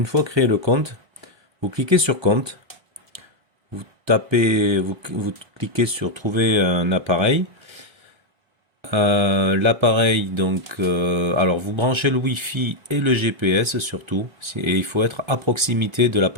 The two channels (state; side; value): late; left; 1.3 ms